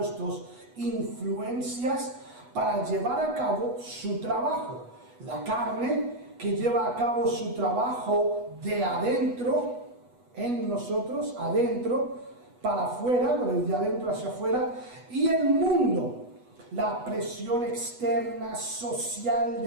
influencias para llevar a cabo su trabajo. La carne, que lleva a cabo su trabajo de adentro, en nosotros, adentro, para afuera, de adentro hacia afuera, y el mundo, la presión externa, social,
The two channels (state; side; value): late; left; 8.1 ms